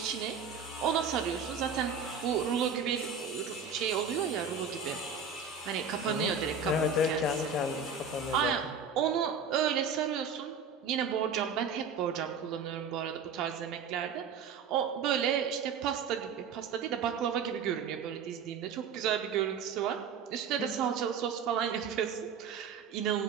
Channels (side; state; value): left; quieter; 5.6 dB